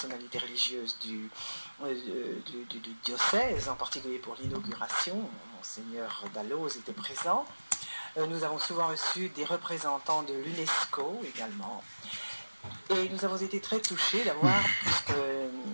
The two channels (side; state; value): both; inverted; correlation -1.00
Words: religieuses du diocèse, en particulier pour l'inauguration, Monseigneur Dalloz était présent. Nous avons souvent reçu des représentants de l'UNESCO également. Et nous avons été très touchés d'avoir, puisque